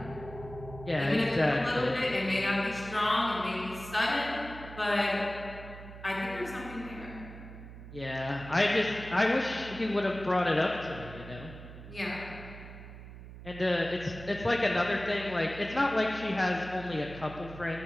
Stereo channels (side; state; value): right; noise; hum, 14 dB below the sound